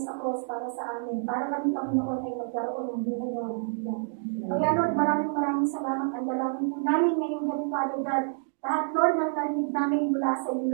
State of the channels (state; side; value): silent; left; digital silence